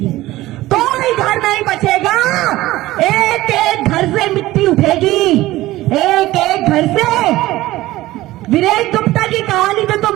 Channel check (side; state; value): left; quieter; 17.0 dB